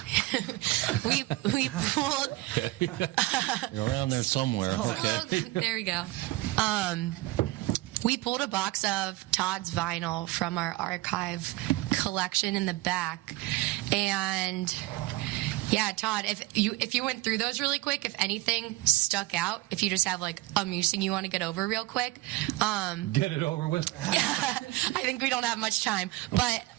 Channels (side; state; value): left; quieter; 19.5 dB